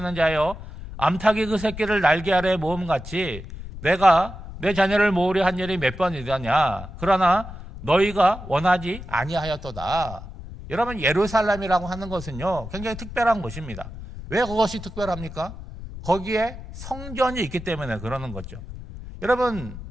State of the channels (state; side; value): noise; left; rumble, 12 dB below the sound